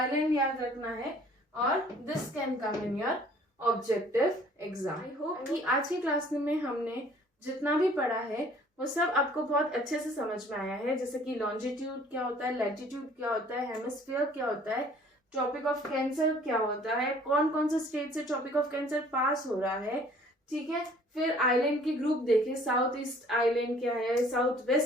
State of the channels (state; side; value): normal; both; correlation 0.55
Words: याद रखना है, और this can come in your objective exam. I hope कि आज की क्लास में हमने जितना भी पढ़ा है वो सब आपको बहुत अच्छे से समझ में आया है। जैसे कि लॉन्जिट्यूड क्या होता है, लैटिट्यूड क्या होता है, हेमिस्फीयर क्या होता है, ट्रॉपिक ऑफ कैंसर क्या होता है, कौन कौन से स्टेट से ट्रॉपिक ऑफ कैंसर पास हो रहा है, ठीक है। फिर आइलैंड की ग्रुप देखे, साउथ ईस्ट आइलैंड क्या है, साउथ